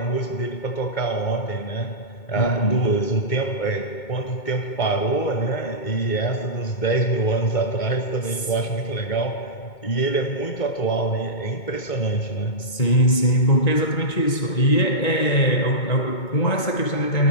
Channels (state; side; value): late; right; 2.2 ms